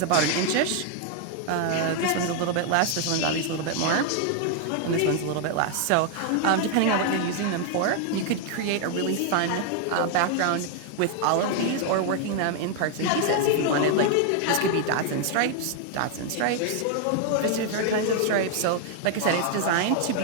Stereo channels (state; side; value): different; both; correlation 0.00